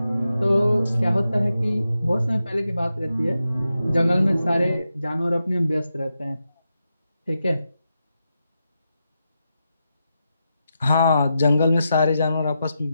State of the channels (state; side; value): inverted; both; correlation -0.88